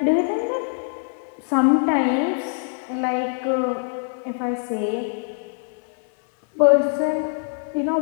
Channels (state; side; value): silent; right; 62 dB below the other